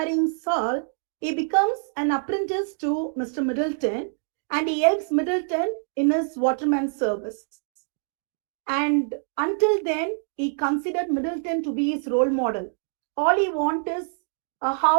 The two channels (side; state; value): left; silent; digital silence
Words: Saul, he becomes an apprentice to Mr. Middleton and he helps Middleton in his waterman service. And until then, he considered Middleton to be his role model. All he wants is a